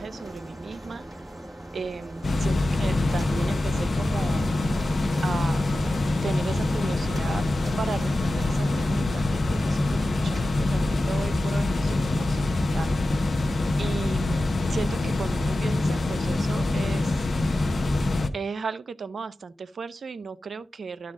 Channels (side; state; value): both; normal; correlation 0.94